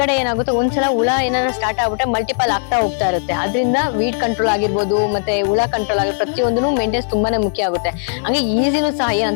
ಏನಾಗುತ್ತೆ, ಒಂದ್ಸಲ ಹುಳ ಏನಾದ್ರು ಸ್ಟಾರ್ಟ್ ಆಗ್ಬಿಟ್ರೆ ಮಲ್ಟಿಪಲ್ ಆಗ್ತಾ ಹೋಗ್ತಾ ಇರುತ್ತೆ. ಅದರಿಂದ ವೀಡ್ ಕಂಟ್ರೋಲ್ ಆಗಿರ್ಬೋದು, ಮತ್ತೆ ಹುಳ ಕಂಟ್ರೋಲ್ ಆಗಿರ್ಬೋದು, ಪ್ರತಿಯೊಂದೂ ಮೇಂಟೆನೆನ್ಸ್ ತುಂಬಾನೇ ಮುಖ್ಯ ಆಗುತ್ತೆ. ಹಂಗೆ ಈಸಿನೂ ಸಹ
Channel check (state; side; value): silent; right; digital silence